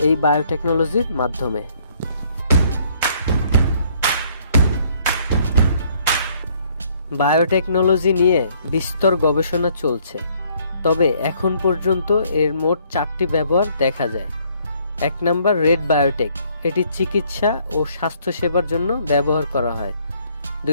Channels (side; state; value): both; inverted; correlation -0.64